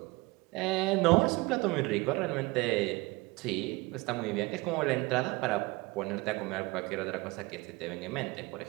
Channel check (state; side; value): quieter; left; 23.7 dB